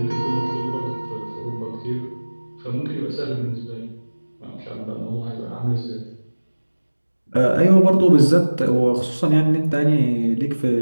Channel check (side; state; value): both; inverted; correlation -1.00